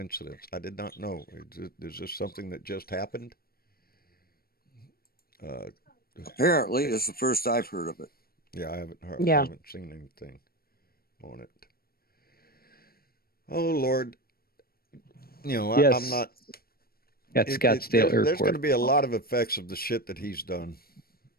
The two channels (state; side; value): late; right; 0.44 ms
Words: I did not know. Is this something that just happened? Apparently, it's the first I've heard of it. Yeah, I haven't heard. Yeah. I haven't seen anything on it. Oh Lord, Yes. I'm not. At Scottsdale Airport. There's going to be a lot of effects of the shit that he's done,